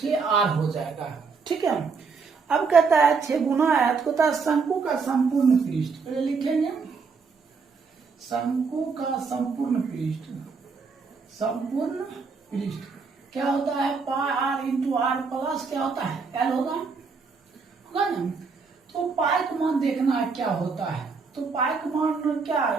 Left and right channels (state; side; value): quieter; left; 4.9 dB